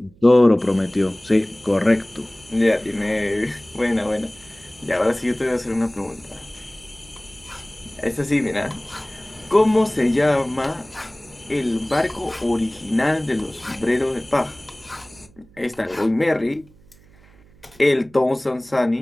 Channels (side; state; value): right; noise; hum, 27 dB below the sound